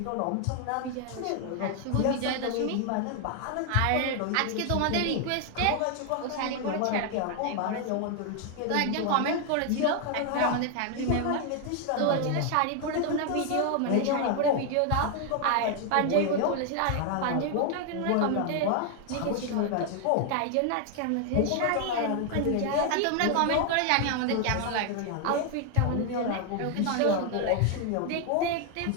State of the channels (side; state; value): both; different; correlation 0.00